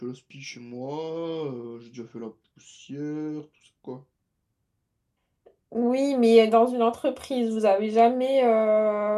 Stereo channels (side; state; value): both; identical; correlation 1.00